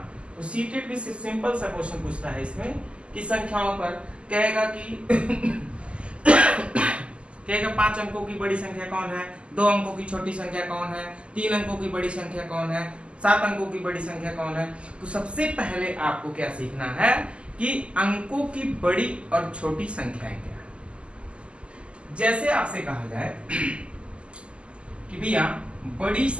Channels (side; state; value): left; late; 0.054 ms